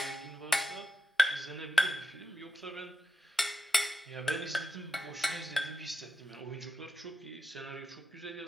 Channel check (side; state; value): both; normal; correlation 0.84